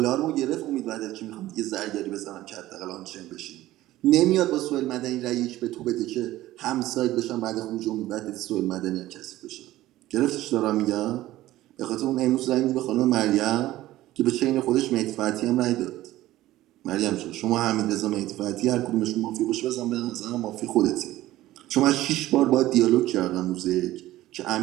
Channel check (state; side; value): quieter; left; 15.7 dB